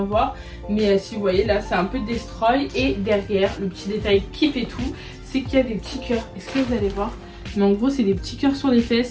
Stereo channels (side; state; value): both; identical; correlation 1.00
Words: voir. Mais si vous voyez là c'est un peu destroy. Et derrière le petit détail qui fait tout, c'est qu'il y a des petits cœurs. Est-ce que vous allez voir? Mais en gros c'est des petits cœurs sur les